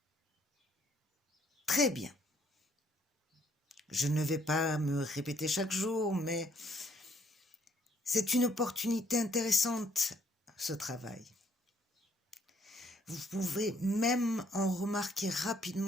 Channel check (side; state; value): both; normal; correlation 0.67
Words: Très bien. Je ne vais pas me répéter chaque jour, mais c'est une opportunité intéressante, ce travail. Vous pouvez même en remarquer